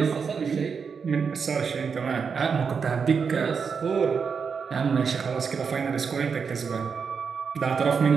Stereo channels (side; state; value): left; quieter; 5.9 dB